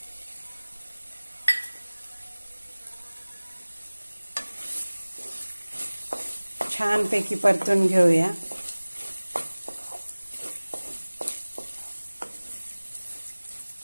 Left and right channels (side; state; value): both; inverted; correlation -1.00